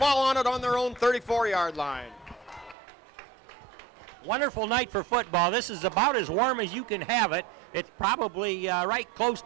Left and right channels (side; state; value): left; drops out; at 2.8 s